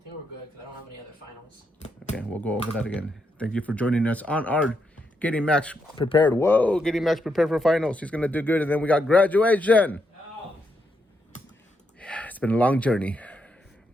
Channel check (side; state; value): both; normal; correlation 0.80